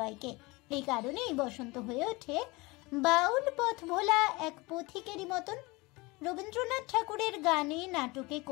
এই কারণেই বসন্ত হয়ে ওঠে বাউল পথ ভোলা এক পথিকেরই মতন। রবীন্দ্রনাথ ঠাকুরের গানে, নাটকে,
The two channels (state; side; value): quieter; right; 23.8 dB